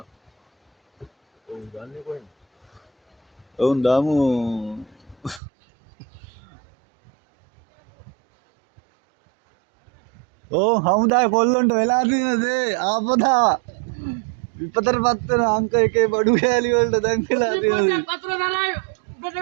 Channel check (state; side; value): drops out; left; at 5.4 s